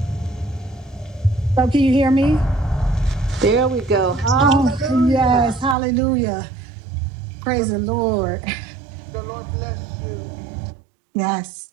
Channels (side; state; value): left; drops out; at 5.8 s